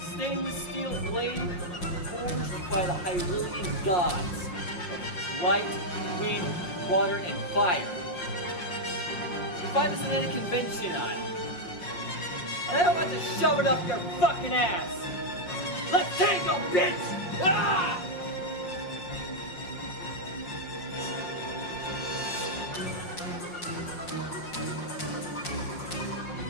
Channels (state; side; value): late; right; 5.6 ms